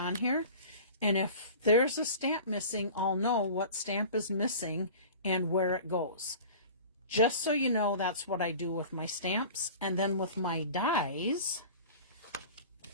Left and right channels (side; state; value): both; inverted; correlation -0.39